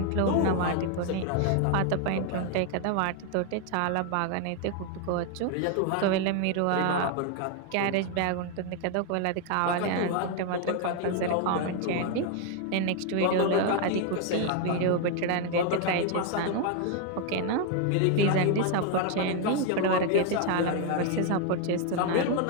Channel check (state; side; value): different; both; correlation 0.00